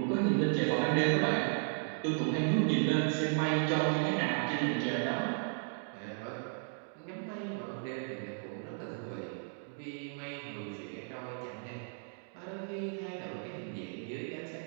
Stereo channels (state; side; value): silent; left; 55 dB below the other